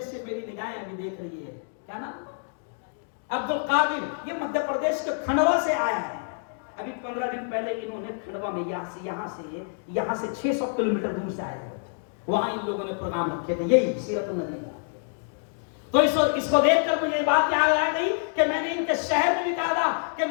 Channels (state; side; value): silent; right; digital silence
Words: سے میری نگاہیں ابھی دیکھ رہی ہے, کیا نام عبد القادر, یہ مدھیہ پردیش کے کھنڈوا سے آیا ہے. ابھی 15 دن پہلے انہوں نے کھنڈوا میں یہاں سے 600 کلومیٹر دور سے آیا ہے, وہاں ان لوگوں نے پروگرام رکھے تھے یہی سیرت النبی کا. تو اس کو دیکھ کر مجھے بات یاد آ گئی کہ میں نے ان کے شہر میں بھی کہا تھا کہ